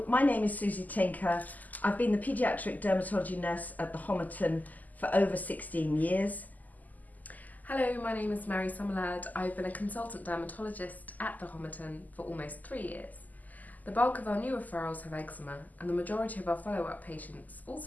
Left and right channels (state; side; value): late; right; 0.081 ms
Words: my name is Susie Tinker. I've been the paediatric dermatology nurse at the Homerton for over 16 years. Hello, my name is Mary Summerlad. I've been a consultant dermatologist at the Homerton for almost 3 years. The bulk of our new referrals have eczema, and the majority of our follow-up patients